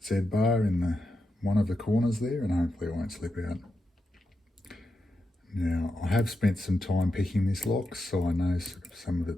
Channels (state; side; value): normal; both; correlation 0.87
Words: Z bar in one of the corners there, and hopefully it won't slip out. Now, I have spent some time picking this lock, so I know some of